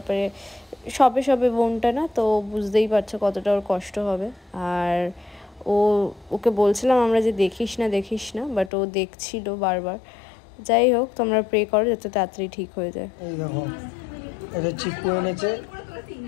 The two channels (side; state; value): right; drops out; at 8.7 s